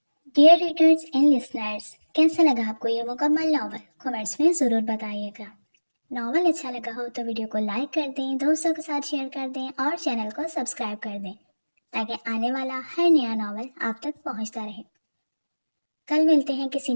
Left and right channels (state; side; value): inverted; both; correlation -1.00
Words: ڈیئر ریڈرز اینڈ لسنرز، کیسا لگا آپ کو یہ مکمل ناول؟ کمنٹس میں ضرور بتائیے گا۔ ناول اچھا لگا ہو تو ویڈیو کو لائک کر دیں، دوستوں کے ساتھ شیئر کر دیں اور چینل کو سبسکرائب کر دیں تاکہ آنے والا ہر نیا ناول آپ تک پہنچتا رہے۔ کل ملتے ہیں کسی